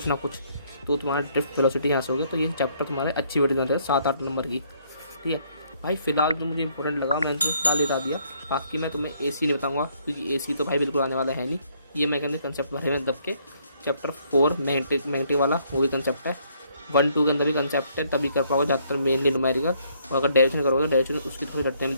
ना कुछ, तो तुम्हारा ड्रिफ्ट वेलोसिटी यहाँ से हो गया। तो ये चैप्टर तुम्हारे अच्छी वीडियो है 7-8 नंबर की, ठीक है भाई। फिलहाल जो मुझे इंपॉर्टेंट लगा मैंने तो फिलहाल बता दिया, बाकी मैं तुम्हें एसी नहीं बताऊंगा क्योंकि एसी तो भाई बिल्कुल आने वाला है नहीं। ये मैं कहने कंसेप्ट भरे में दब के चैप्टर 4 मैग्नेटिक वाला वो भी कंसेप्ट है, 1-2 के अंदर भी कंसेप्ट है, तभी कर पाओगे ज़्यादातर मेनली न्यूमेरिकल। और अगर डायरेक्शन करोगे डायरेक्शन उसकी थोड़ी रटने में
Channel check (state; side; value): inverted; both; correlation -0.68